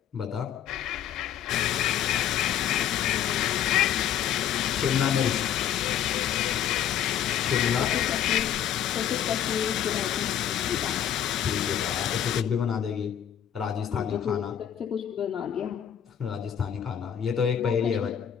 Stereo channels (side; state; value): right; quieter; 9.7 dB